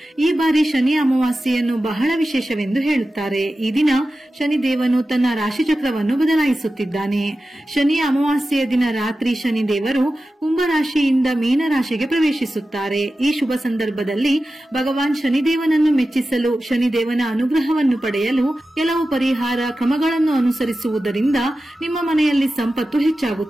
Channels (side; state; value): both; normal; correlation 0.93